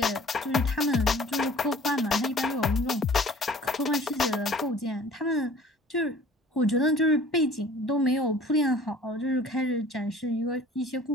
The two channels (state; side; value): normal; both; correlation 0.48